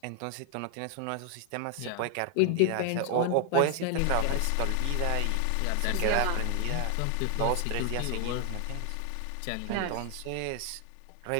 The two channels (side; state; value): both; different; correlation 0.00